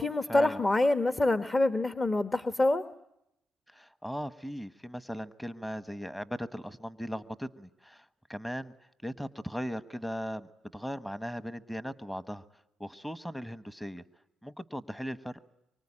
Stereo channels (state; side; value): normal; both; correlation 0.94